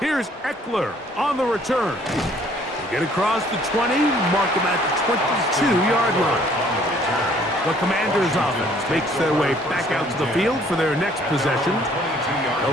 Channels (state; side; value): normal; both; correlation 0.60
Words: Eckler on the return. They get across the 20, mark them at the 22-yard line. The Commanders' offense makes their way back out to the field for their next possession.